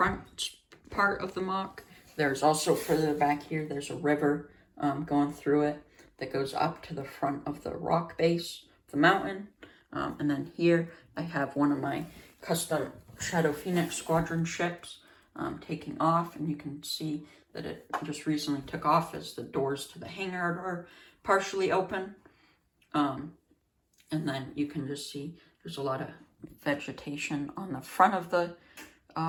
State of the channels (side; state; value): both; identical; correlation 1.00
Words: part of the mock. There's also further back here, there's a river going through it that goes up to the front of the rock base of the mountain. And then here I have one of my custom Shadow Phoenix Squadron ships taking off, and you can see that it just recently took off as the doors to the hangar are partially open. And then you can just see there's a lot of vegetation on the front of the